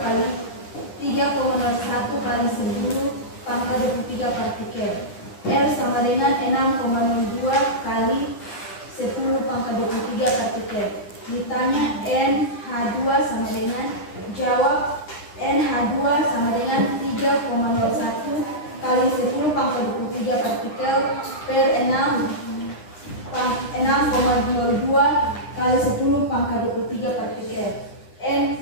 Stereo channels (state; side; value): late; right; 9.9 ms